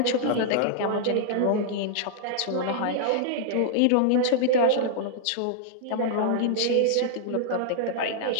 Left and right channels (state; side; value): different; both; correlation -0.01